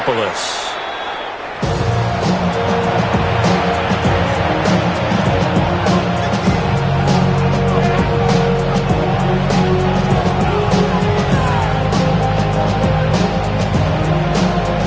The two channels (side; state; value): both; identical; correlation 1.00